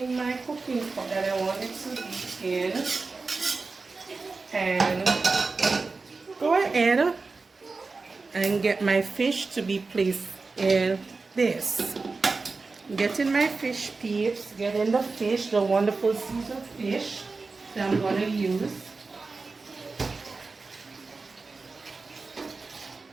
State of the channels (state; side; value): quieter; left; 4.0 dB